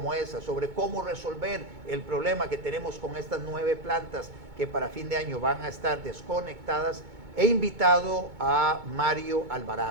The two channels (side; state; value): left; late; 2.2 ms